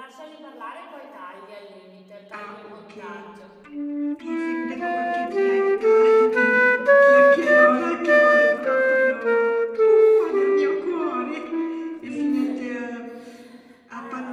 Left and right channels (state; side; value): identical; both; correlation 1.00